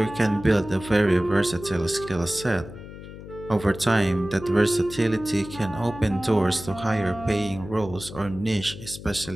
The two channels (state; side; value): noise; left; hum, 14 dB below the sound